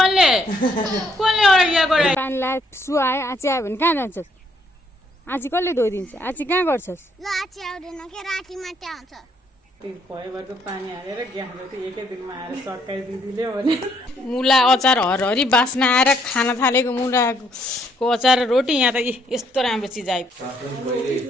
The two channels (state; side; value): normal; both; correlation 0.70